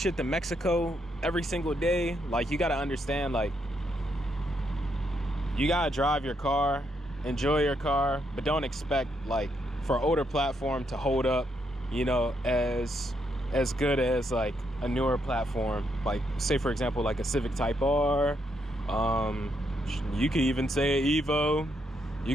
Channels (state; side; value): normal; both; correlation 0.77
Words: to Mexico every single day. Like, you gotta understand, like, you gotta drive your car, enjoy your car, but don't expect like for an older platform to hold up, you know, as good as like a newer platform. Like, say for example, like a Civic Type R. You could even say Evo. You